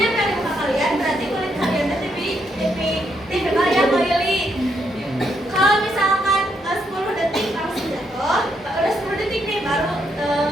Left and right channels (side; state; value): both; normal; correlation 0.77